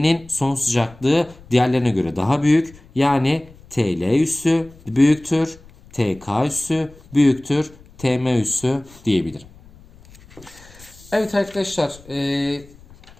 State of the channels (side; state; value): left; noise; rumble, 24 dB below the sound